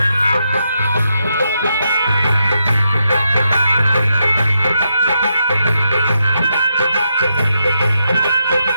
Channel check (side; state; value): both; inverted; correlation -0.82